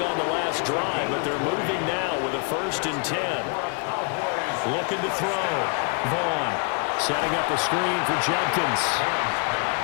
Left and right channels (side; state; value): right; quieter; 35.7 dB